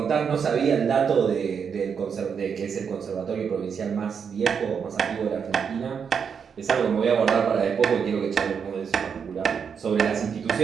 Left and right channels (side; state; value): left; quieter; 6.7 dB